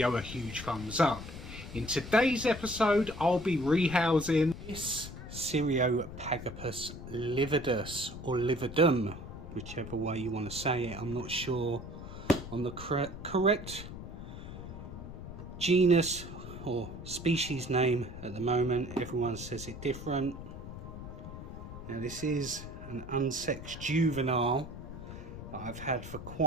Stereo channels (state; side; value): noise; left; rumble, 11 dB below the sound